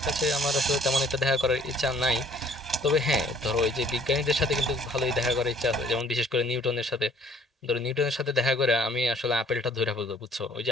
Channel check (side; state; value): both; normal; correlation 0.58